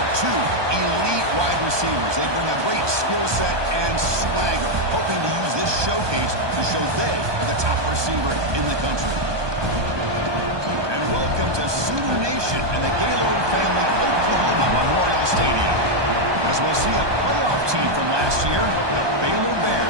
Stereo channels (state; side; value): late; left; 1.2 ms